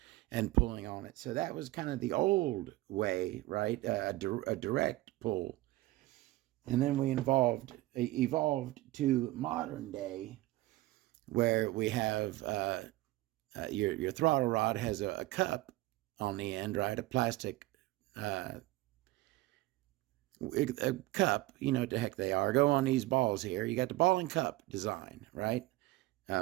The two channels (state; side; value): quieter; left; 18.4 dB